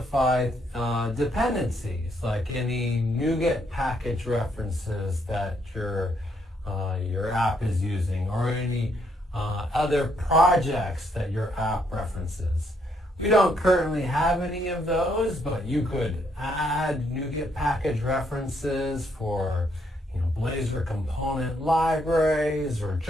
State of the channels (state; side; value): normal; both; correlation 0.73